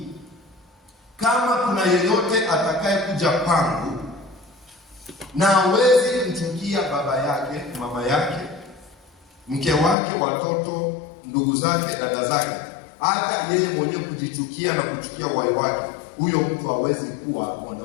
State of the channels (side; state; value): right; drops out; at 10.0 s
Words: kama kuna yeyote atakaye kuja kwangu na hawezi kumchukia baba yake, mama yake, mke wake, watoto, ndugu zake, dada zake, hata yeye mwenyewe kujichukia na kuchukia uhai wake, huyo mtu hawezi kuwa